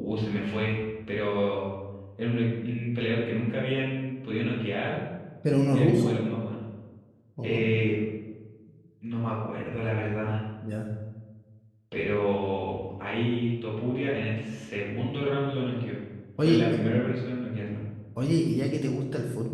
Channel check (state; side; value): identical; both; correlation 1.00